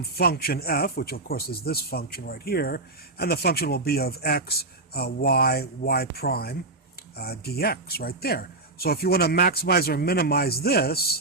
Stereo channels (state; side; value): quieter; left; 3.0 dB